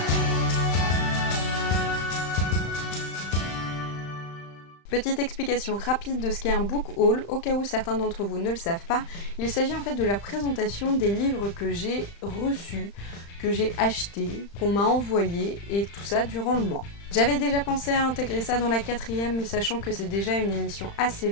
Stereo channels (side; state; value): right; late; 35 ms